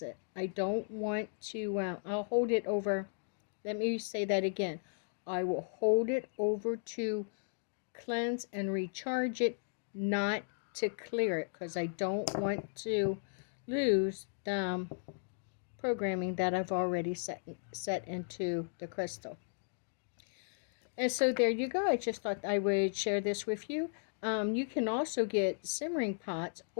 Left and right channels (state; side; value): silent; right; digital silence